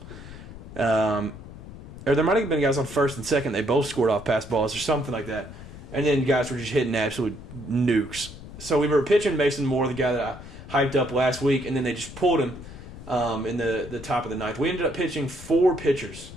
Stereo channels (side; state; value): left; noise; rumble, 14 dB below the sound